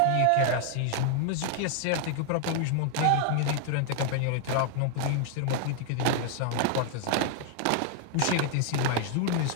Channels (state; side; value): different; both; correlation 0.00